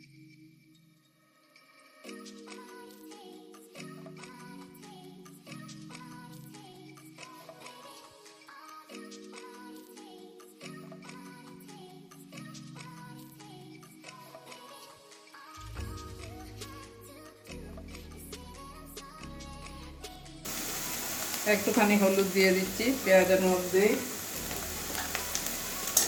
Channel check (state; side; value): identical; both; correlation 1.00